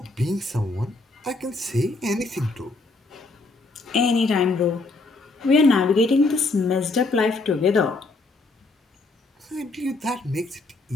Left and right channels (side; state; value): right; quieter; 3.3 dB